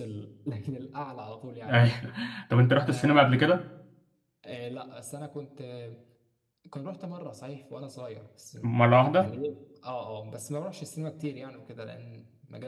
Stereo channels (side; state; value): both; identical; correlation 1.00